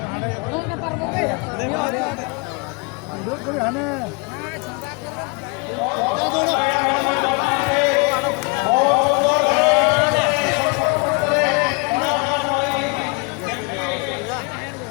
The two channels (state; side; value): quieter; right; 30.8 dB